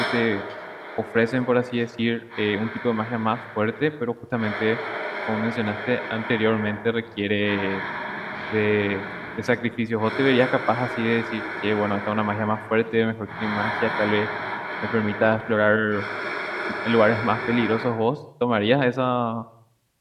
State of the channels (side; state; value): both; identical; correlation 1.00